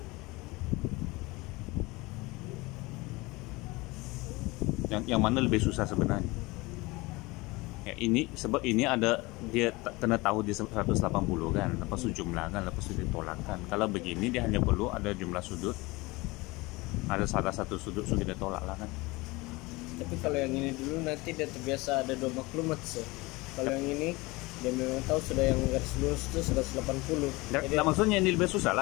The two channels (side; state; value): right; quieter; 22.8 dB